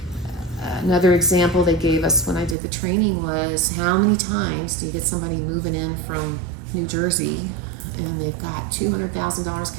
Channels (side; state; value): left; drops out; at 2.6 s